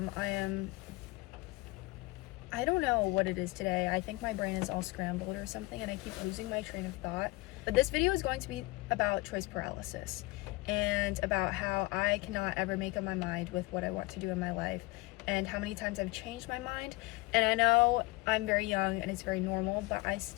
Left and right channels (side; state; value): right; quieter; 22.3 dB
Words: don't know what it is today. I think my brain is all scrambled or something and I keep losing my train of thought. But this video is going to be about choice paralysis and about how I cannot ever make up my mind with what I want to do in my life and how many times I've changed my mind. And I know I'm very young and it's very normal, but I